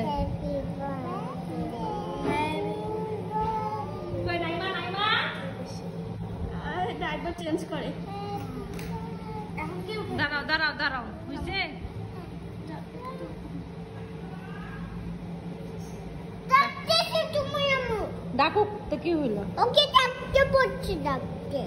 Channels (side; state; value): both; identical; correlation 1.00